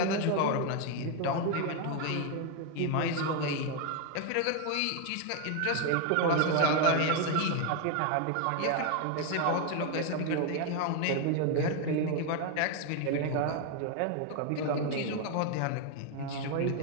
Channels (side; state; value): both; different; correlation 0.01